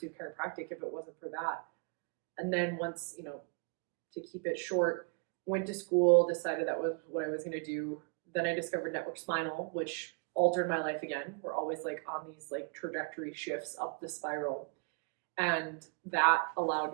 chiropractic if it wasn't for that. And then once, to keep it short, went to school, decided that was what I was going to do. Then I discovered network spinal, which altered my life again. We're always like on these like trajectory shifts up the spiral. And that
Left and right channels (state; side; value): quieter; left; 35.2 dB